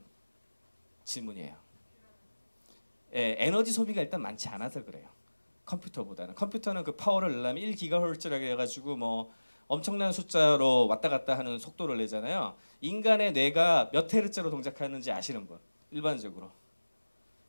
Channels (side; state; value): both; inverted; correlation -1.00